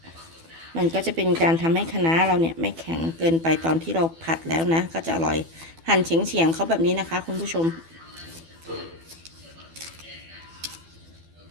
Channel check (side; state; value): left; late; 12 ms